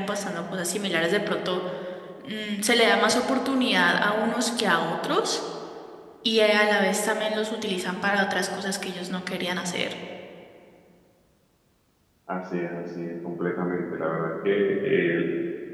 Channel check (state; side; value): identical; both; correlation 1.00